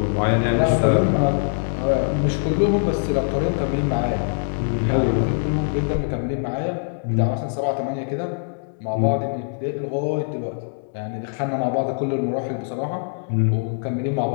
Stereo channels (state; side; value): silent; right; 61 dB below the other